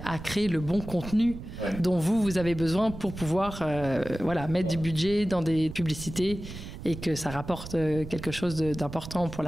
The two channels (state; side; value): noise; right; rumble, 11 dB below the sound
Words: créer le bon contenu dont vous avez besoin pour pouvoir mettre du budget dans des publicités et que ça rapporte quelque chose d'important pour